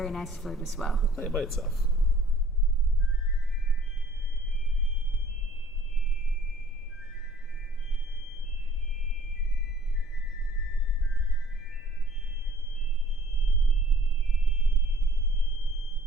nice flute as well. Play it by itself.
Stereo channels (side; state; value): both; normal; correlation 0.54